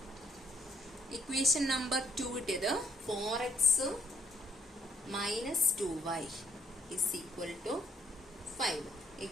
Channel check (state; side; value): normal; both; correlation 0.70